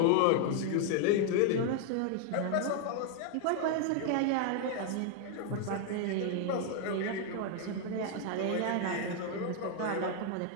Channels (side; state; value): both; different; correlation 0.00